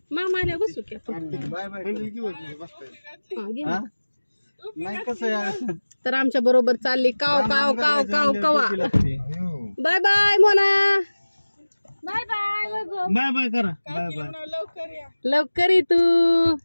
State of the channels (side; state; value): both; inverted; correlation -1.00